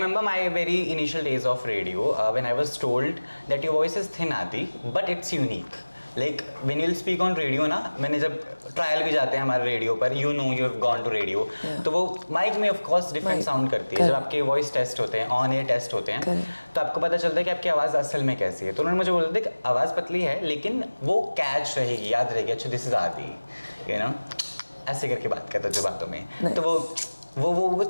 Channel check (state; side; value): inverted; both; correlation -1.00